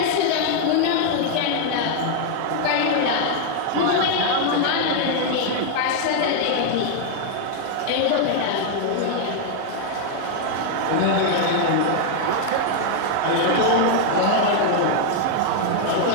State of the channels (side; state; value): both; different; correlation 0.00